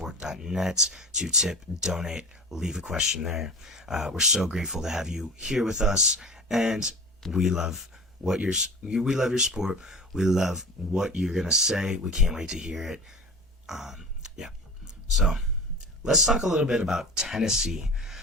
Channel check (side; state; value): both; normal; correlation 0.35